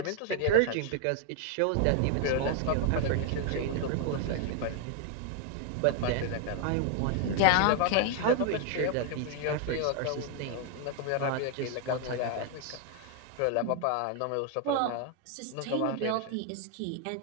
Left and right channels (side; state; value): both; different; correlation 0.00